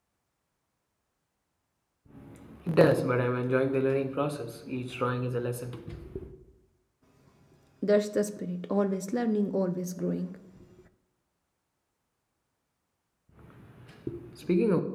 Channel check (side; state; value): both; identical; correlation 1.00